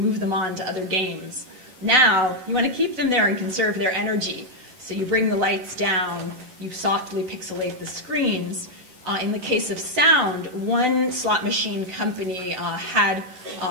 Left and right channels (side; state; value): left; late; 11 ms